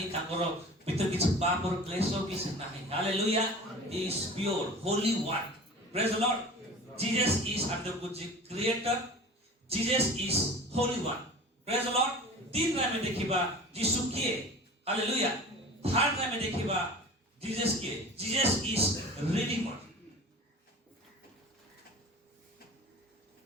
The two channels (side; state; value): both; normal; correlation 0.38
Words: ताकर भीतर किछ पाप और क्लेश किछ नाही hallelujah he is pure Holi one praise the Lord Jesus is under the creator Jesus is holy one praise the lord तीन रा में देखिबा यीशु किए हालेलुया थर्ड रा में देखिबा जीसस किए जीसस इज रिडीमर